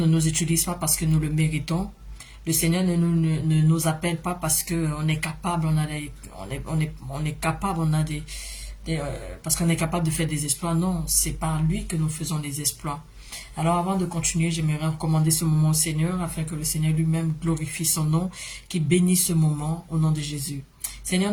nous utilise pas parce que nous le méritons. Le Seigneur ne nous appelle pas parce qu'on est capable, on est capable, parce qu'on est capable de faire des exploits. Non, c'est par lui que nous faisons les exploits. Alors avant de continuer, j'aimerais recommander ce moment au Seigneur, afin que le Seigneur lui-même glorifie son nom, qu'il bénisse ce moment au nom de Jésus. Seigneur,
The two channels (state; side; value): identical; both; correlation 1.00